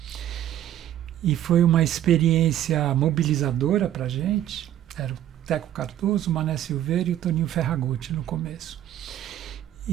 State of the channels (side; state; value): left; quieter; 11.8 dB